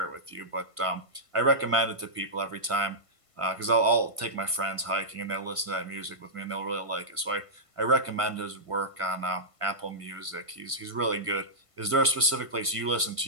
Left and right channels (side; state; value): left; late; 1.5 ms